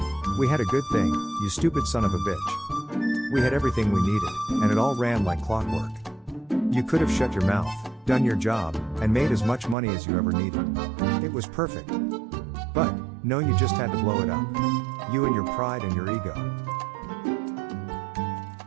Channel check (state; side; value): drops out; left; at 9.8 s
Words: We had a good thing, you stupid son of a bitch. We had everything we needed, and it all ran like clockwork. You could have shut your mouth, done your job, and made as much money as you ever needed. It was perfect. But, no, you just had to blow it up. You and your pride and your ego.